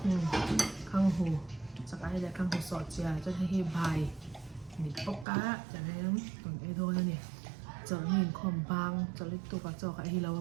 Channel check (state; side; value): drops out; left; at 5.2 s